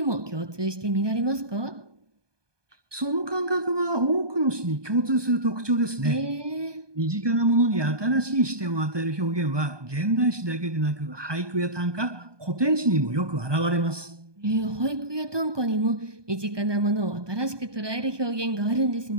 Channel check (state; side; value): late; left; 1.2 ms